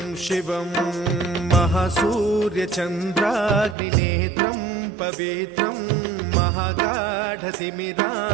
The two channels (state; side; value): drops out; left; at 3.8 s